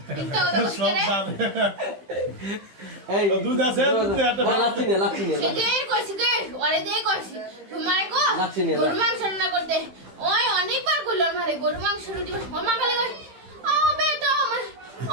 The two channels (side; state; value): left; late; 15 ms